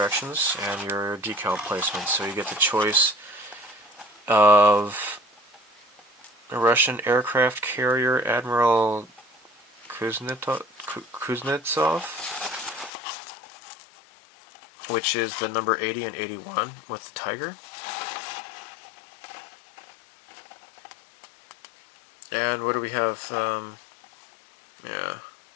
and your decal placement. So you get the choice of a Russian aircraft carrier Admiral Kuznetsov, which is the number 80 and 81 with the Tiger. And what do we have? Yeah.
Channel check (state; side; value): drops out; right; at 12.9 s